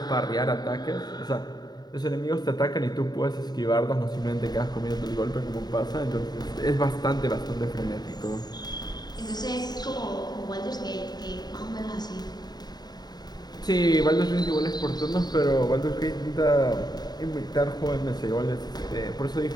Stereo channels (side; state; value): right; late; 0.20 ms